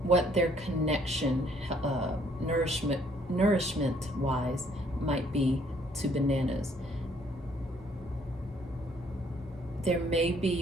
what their connection, nourishment-wise, might be to bananas. There may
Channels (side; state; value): both; normal; correlation 0.64